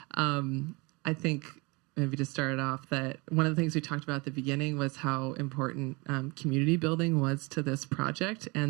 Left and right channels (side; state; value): left; quieter; 26.9 dB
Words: I think maybe to start off that one of the things we talked about at the beginning was how important community building was to this project,